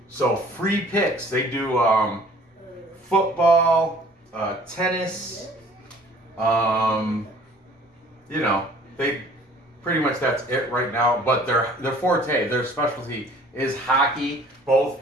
So free picks. They do football, tennis, you know, they pretty much that's it right now. But their forte, their specialty is hockey. Both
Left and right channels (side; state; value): both; normal; correlation 0.52